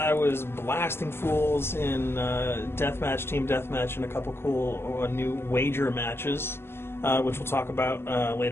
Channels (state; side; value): late; right; 0.12 ms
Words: was blasting fools in deathmatch, team deathmatch, and a couple cool new wager matches, which we'll talk about